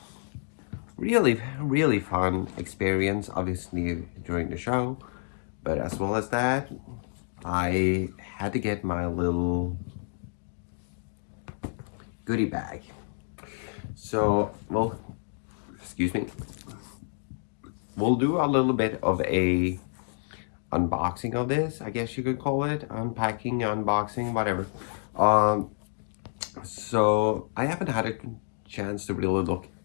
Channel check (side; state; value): right; silent; digital silence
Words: really fun experience. Obviously during the show, but as well as that, I had to get my little goodie bag. So, well, excuse me. We'll do a little bit of a unboxing of this, I guess you could call it. Unpacking, unboxing, whatever. Um, so I haven't had a chance to really look